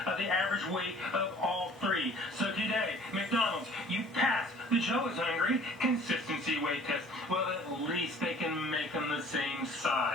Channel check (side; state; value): both; normal; correlation 0.51